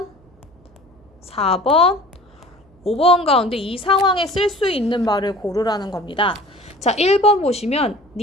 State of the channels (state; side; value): noise; right; hum, 30 dB below the sound